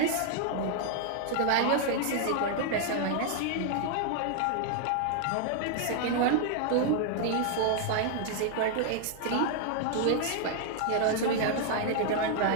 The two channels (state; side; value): different; both; correlation 0.00